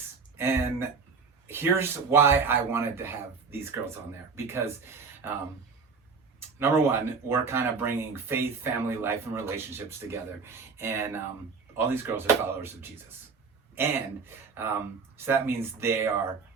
And here's why I wanted to have these girls on there. Because number one, we're kind of bringing faith, family, life, and relationships together. And all these girls are followers of Jesus. And so that means they are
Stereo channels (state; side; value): quieter; left; 5.1 dB